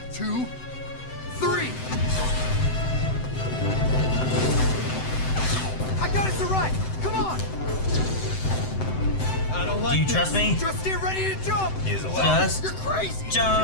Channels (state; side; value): late; right; 7.8 ms